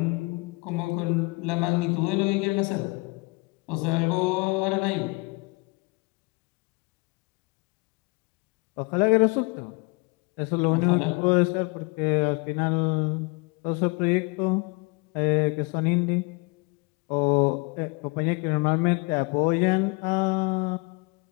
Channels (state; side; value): quieter; right; 28.3 dB